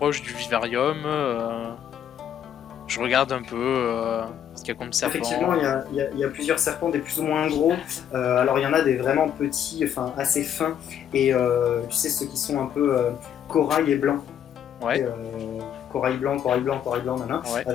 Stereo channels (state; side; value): quieter; right; 9.5 dB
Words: du vivarium. Je regarde un peu ce qu'il y a comme serpent. Effectivement, il y a plusieurs serpents, des plus ou moins gros. Alors, il y en a des vraiment petits, enfin assez fins. Et tu sais, ceux qui sont un peu corail et blanc. Ouais. Corail blanc, nanana, ouais.